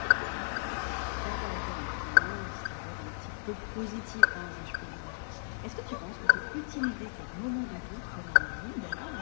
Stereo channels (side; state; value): right; silent; 56 dB below the other